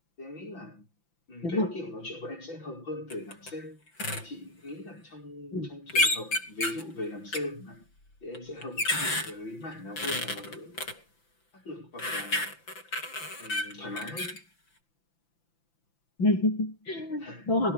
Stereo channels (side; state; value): right; late; 5.9 ms